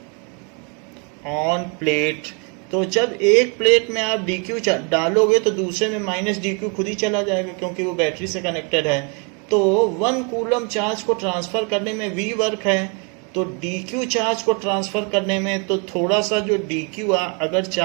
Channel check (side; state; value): left; quieter; 35.7 dB